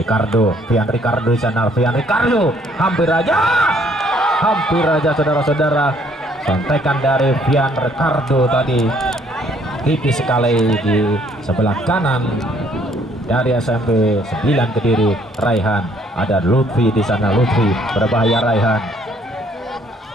Ricardo di sana, hampir aja saudara-saudara, sontekan dari Fian Ricardo tadi tipis sekali di sebelah kanan dari SMP 9 Kediri. Raihan, ada Lutfi di sana, Lutfi berbahaya. Raihan,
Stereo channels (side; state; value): both; normal; correlation 0.64